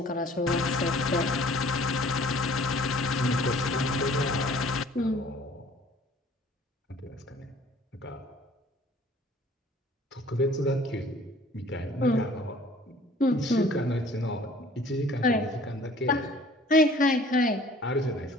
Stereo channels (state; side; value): normal; both; correlation 0.52